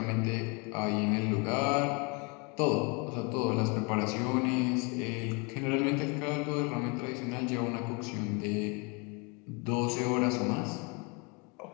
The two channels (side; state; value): right; quieter; 31.3 dB